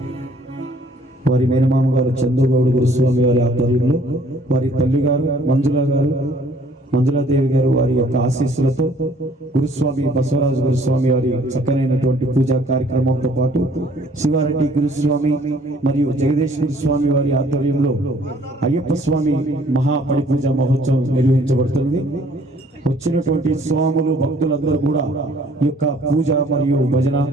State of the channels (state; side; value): normal; both; correlation 0.59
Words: వారి మేనమామ గారు చందు గౌడ్ గురుస్వామి వారి ఆధ్వర్యంలో వారి తల్లి గారు మంజులాదేవి గారు వారి యొక్క ఆశీస్సులతో గురుస్వామి బసవరాజు గురుస్వామి వారి చక్కనైనటువంటి పూజా కార్యక్రమంతో పాటు శివారెడ్డి గురుస్వామి మరియు జగదీష్ గురుస్వామి వారి ఆధ్వర్యంలో అయ్యప్ప స్వామి మహాపడి పూజ మహోత్సవం నిర్వహించబడుతుంది. వచ్చినటువంటి స్వాములు భక్తులందరూ కూడా ఈ యొక్క పూజ మరియు భజన